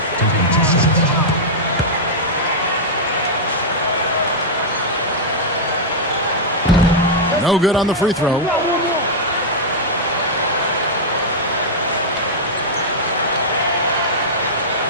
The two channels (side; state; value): both; normal; correlation -0.07